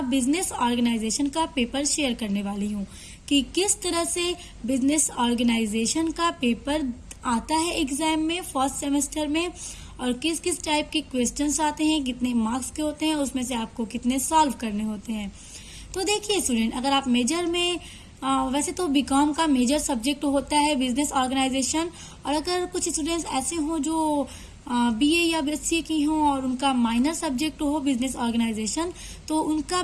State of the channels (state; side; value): identical; both; correlation 1.00